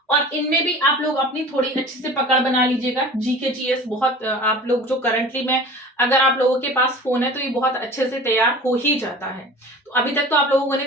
और इनमें भी आप लोग अपनी थोड़ी अच्छी से पकड़ बना लीजिएगा। जीके जीएस बहुत आप लोग जो करंटली में अगर आप लोगों के पास फोन है तो ये बहुत अच्छे से तैयार हो ही जाता है। तो अभी तक तो आप लोगों ने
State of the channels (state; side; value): normal; both; correlation 0.40